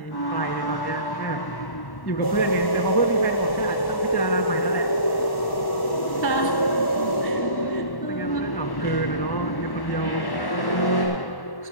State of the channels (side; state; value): right; late; 1.1 ms